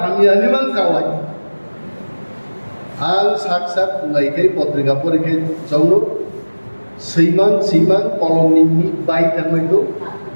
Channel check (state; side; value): inverted; both; correlation -1.00